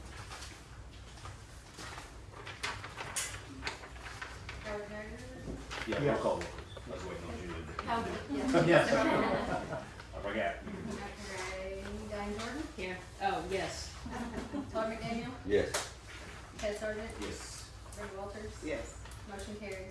Howard Haggard. Yeah, roll Yes. call vote, please. I was waiting on Julie. Howard, yes. Yes. I forgot. Diane Jordan. Here. Oh, yes. Todd McDaniel. Yes. Chad Sargent. Yes. Brenda Walters. Yes. Motion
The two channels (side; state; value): both; identical; correlation 1.00